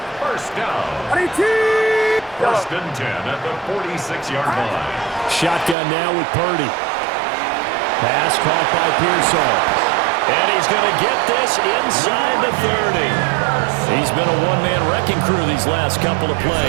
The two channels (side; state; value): left; drops out; at 5.8 s